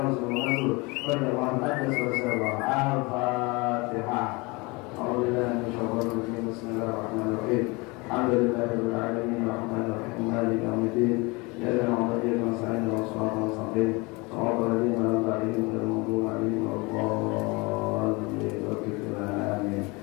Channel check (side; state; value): right; quieter; 26.3 dB